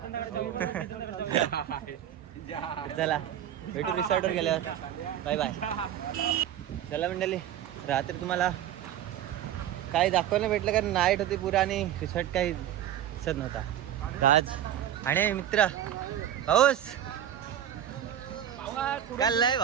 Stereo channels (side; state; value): left; quieter; 10.8 dB